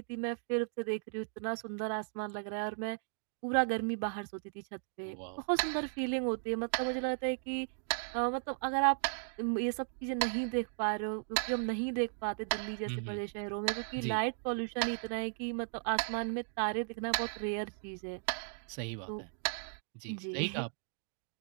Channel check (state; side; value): silent; left; digital silence